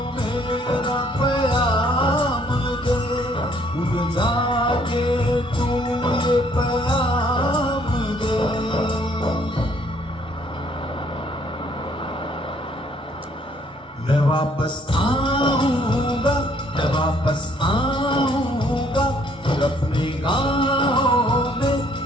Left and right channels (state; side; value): normal; both; correlation 0.64